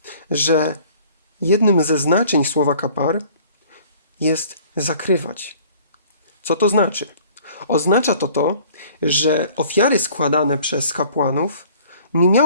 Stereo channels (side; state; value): both; inverted; correlation -0.52